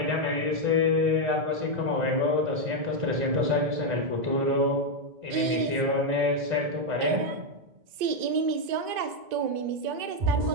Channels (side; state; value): left; late; 2.0 ms